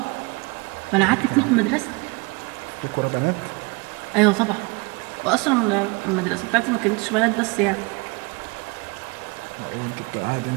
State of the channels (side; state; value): left; quieter; 27.2 dB